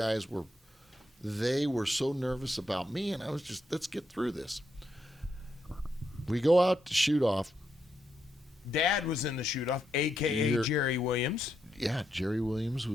were so nervous about me, and I was just, let's get through this. We go out to shoot off. Dad was in the shoot-off, a.k.a. Jerry Williams. Yeah, Jerry Williams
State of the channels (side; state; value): both; normal; correlation 0.81